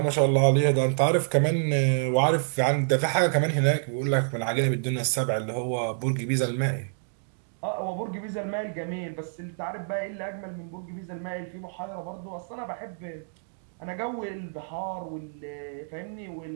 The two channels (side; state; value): left; silent; digital silence